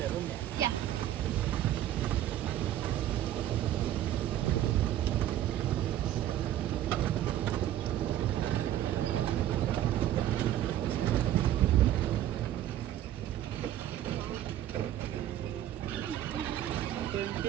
room. Yeah. Yeah.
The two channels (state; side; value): quieter; left; 12.3 dB